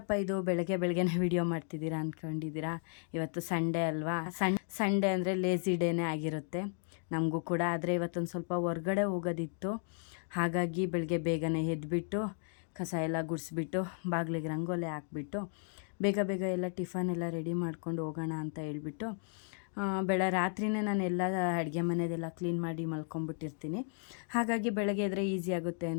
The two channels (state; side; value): silent; right; 55 dB below the other